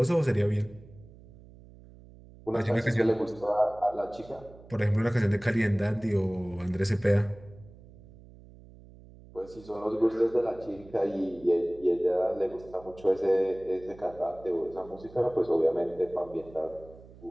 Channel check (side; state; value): right; noise; hum, 21 dB below the sound